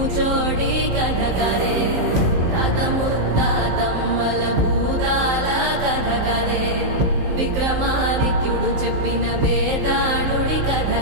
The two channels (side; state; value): left; late; 15 ms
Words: కథ కదే తాత ముత్తాతమ్మల భూతాల కథ కదే విక్రమాదిత్యుడు చెప్పిన వేదాళుడి కథ